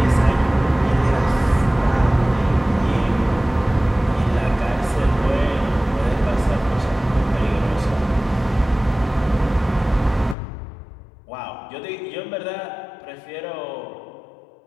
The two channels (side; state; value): right; drops out; at 10.4 s